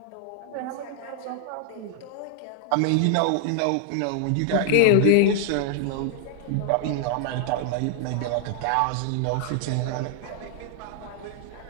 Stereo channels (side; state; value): both; different; correlation 0.00